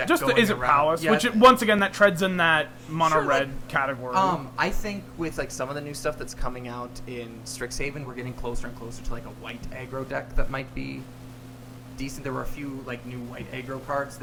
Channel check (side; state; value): both; identical; correlation 1.00